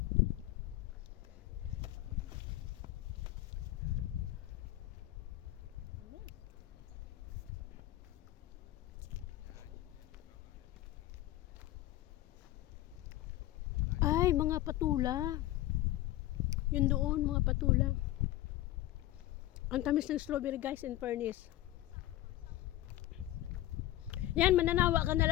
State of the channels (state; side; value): quieter; right; 15.0 dB